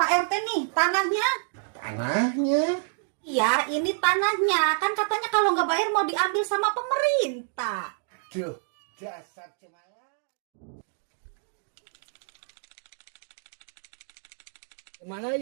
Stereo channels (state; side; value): silent; left; digital silence